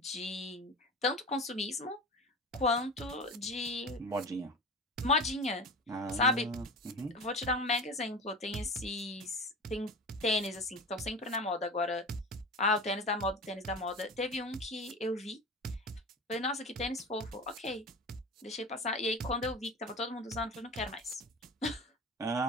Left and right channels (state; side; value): normal; both; correlation 0.32